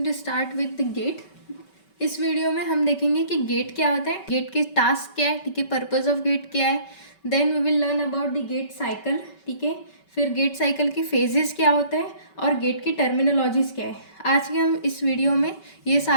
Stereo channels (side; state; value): right; late; 5.2 ms